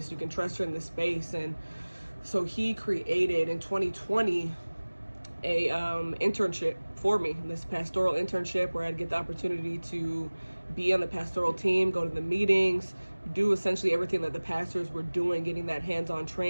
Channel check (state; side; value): inverted; both; correlation -1.00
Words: you can trust her in this space. And so he created in 2020 a internship for me, this pastoral internship, where I'd get the opportunity to be on the pastoral team, go to the meetings, do essentially everything that the pastors were doing, getting that hands-on